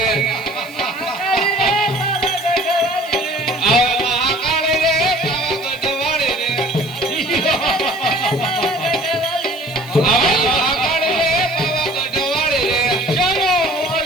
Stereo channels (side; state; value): right; noise; hiss, 22 dB below the sound